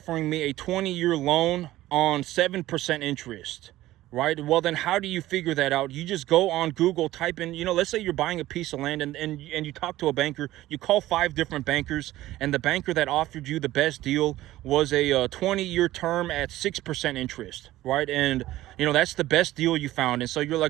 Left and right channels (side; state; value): left; quieter; 15.6 dB